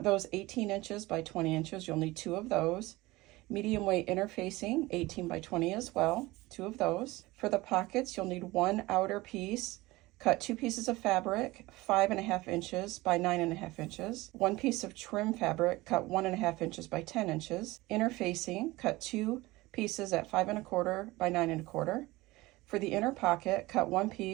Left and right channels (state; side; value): quieter; left; 20.2 dB